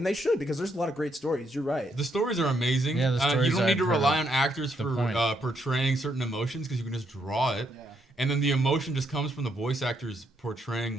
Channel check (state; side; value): normal; both; correlation 0.76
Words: they should because there's a lot of great stories. You're right. The stories are amazing. Yeah, the You stories don't need to I've heard rely of. on actors The for point. portraying certain emotions because you can just draw it. Yeah. And then the emotion just comes from the voice actors portraying